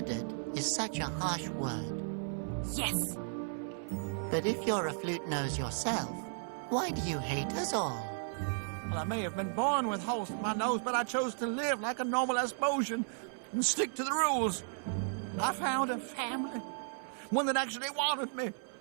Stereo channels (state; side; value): silent; left; 55 dB below the other